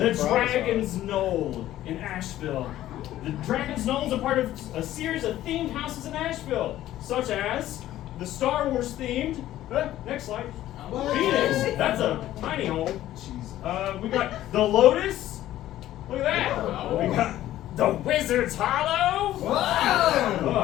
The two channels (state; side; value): quieter; right; 13.7 dB